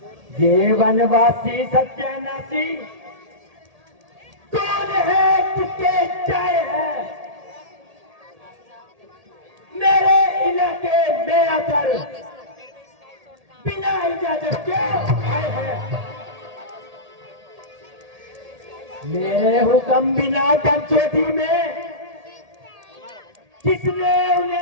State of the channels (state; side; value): late; left; 1.8 ms